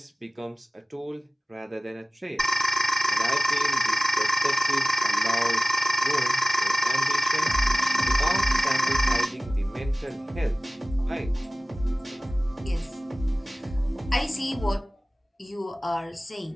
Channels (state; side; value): normal; both; correlation 0.97